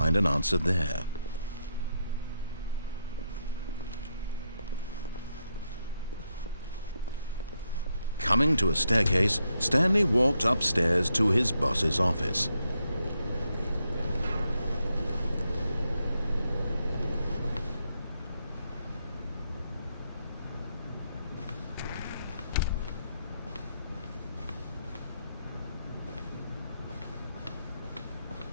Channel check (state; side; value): inverted; both; correlation -0.81